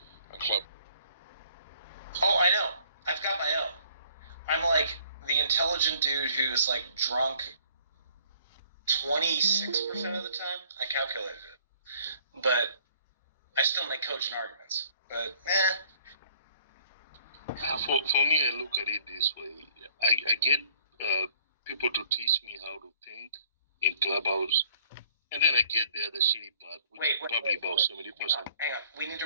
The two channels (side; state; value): both; inverted; correlation -0.59